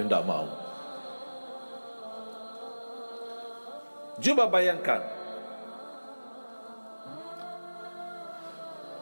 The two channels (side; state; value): both; inverted; correlation -1.00